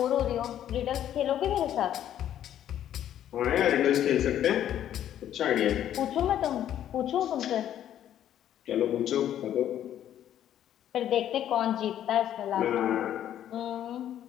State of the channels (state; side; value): quieter; right; 11.0 dB